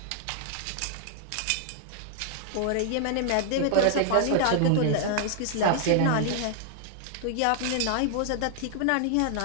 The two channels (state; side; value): different; both; correlation 0.00